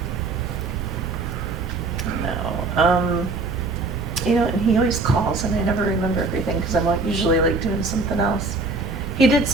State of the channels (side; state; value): left; quieter; 3.6 dB